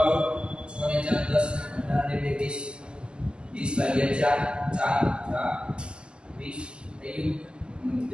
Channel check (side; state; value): left; late; 0.049 ms